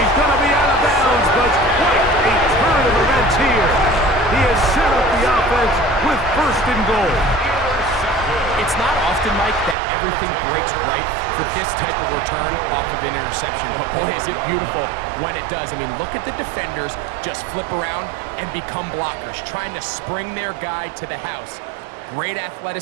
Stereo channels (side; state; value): left; drops out; at 9.8 s